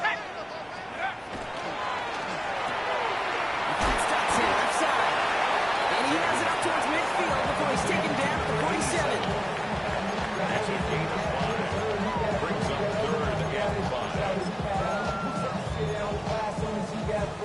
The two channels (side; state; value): both; identical; correlation 1.00